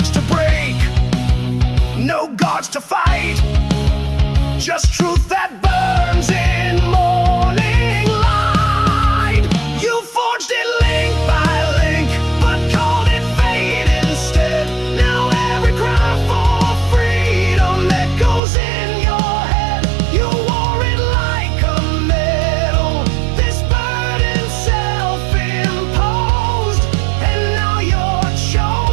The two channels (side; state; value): left; drops out; at 18.4 s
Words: to break, no guards to fight, just truth that burns in morning light. You forged it link by link, but called it fate instead. Now every cry for freedom echoes in your head. You wore it like a medal, this burden self-imposed, and now you're